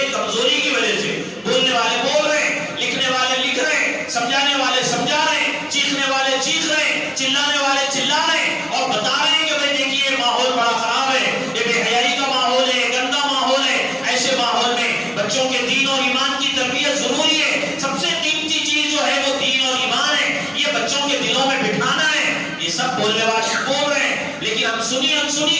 کمزوری کی وجہ سے۔ بولنے والے بول رہے ہیں، لکھنے والے لکھ رہے ہیں، سمجھانے والے سمجھا رہے ہیں، چیخنے والے چیخ رہے ہیں، چلانے والے چلا رہے ہیں، اور بتا رہے ہیں کہ بھائی دیکھیے ماحول بڑا خراب ہے، یہ بے حیائی کا ماحول ہے، گندا ماحول ہے۔ ایسے ماحول میں بچوں کے دین اور ایمان کی تربیت ضروری ہے۔ سب سے قیمتی چیز جو ہے وہ دین اور ایمان ہے، یہ بچوں کے دلوں میں بٹھانا ہے۔ یہ سب بولنے والے بول رہے ہیں، لیکن ہم سنی انسنی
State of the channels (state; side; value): identical; both; correlation 1.00